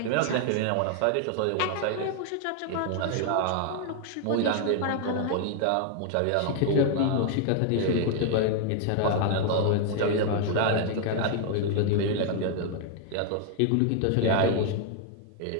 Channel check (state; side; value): different; both; correlation 0.00